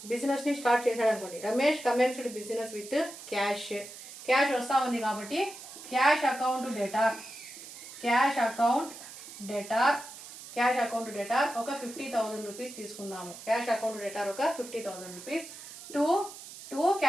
బిజినెస్ని స్టార్ట్ చేశాడు అనుకోండి. Ramesh commenced business with cash వస్తూ ఉంది కాబట్టి క్యాష్ అకౌంట్ డేటార్ ఒక 50,000 రూపీస్ తీసుకుందాము. క్యాష్ అకౌంట్ డేటార్ ఒక 50,000 రూపీస్ టు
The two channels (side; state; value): right; noise; hiss, 14 dB below the sound